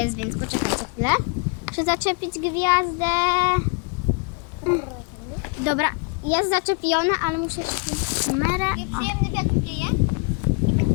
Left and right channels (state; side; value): quieter; right; 31.8 dB